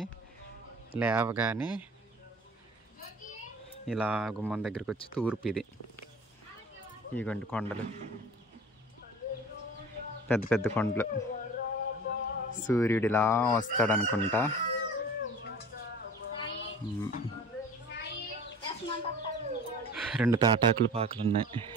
లేవగానే ఇలా గుమ్మం దగ్గరికి వచ్చి తూర్పు ఇది. ఇగోండి కొండలు, పెద్ద పెద్ద కొండలు. సూర్యుడు ఇలా వస్తాడు అనుకుంటా. రెండు తాటాకులు పాకలు ఉన్నాయి.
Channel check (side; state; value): both; normal; correlation 0.42